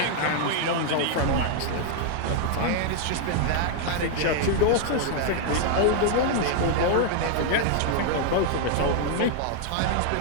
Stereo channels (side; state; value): both; different; correlation 0.00